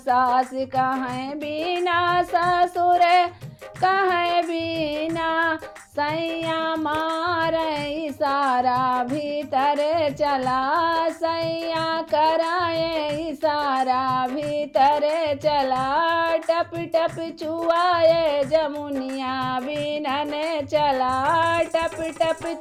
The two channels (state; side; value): identical; both; correlation 1.00